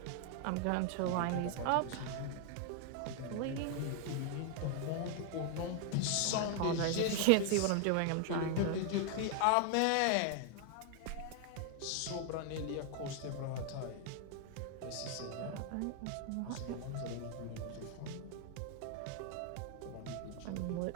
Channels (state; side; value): different; both; correlation 0.00